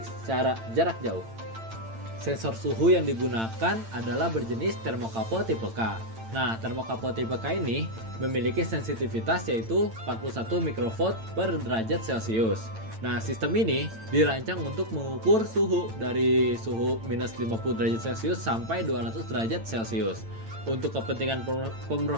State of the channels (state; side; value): late; left; 8.9 ms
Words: secara jarak jauh. Sensor suhu yang digunakan adalah berjenis termokapel tipe K. Nah, termokapel tipe K ini memiliki sensitivitas yaitu 41 mikrovolt per derajat Celcius. Nah, sistem ini dirancang untuk mengukur suhu dari suhu minus 50 derajat Celcius sampai 200 derajat Celcius. Untuk kepentingan